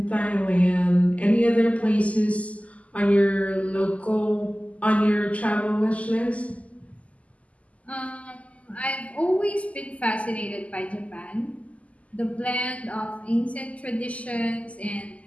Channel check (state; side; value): late; right; 0.068 ms